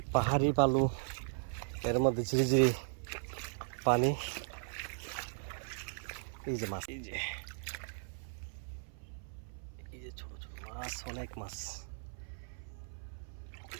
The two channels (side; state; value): left; silent; 53 dB below the other